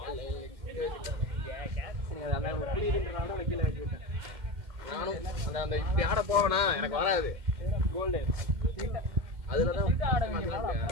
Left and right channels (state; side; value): late; left; 2.1 ms